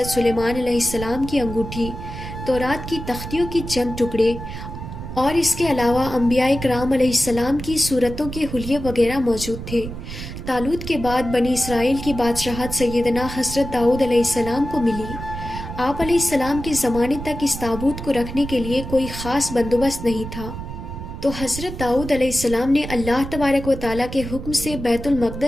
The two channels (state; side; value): noise; right; rumble, 9 dB below the sound